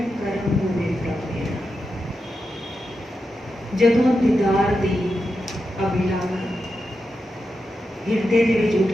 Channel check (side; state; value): both; normal; correlation 0.88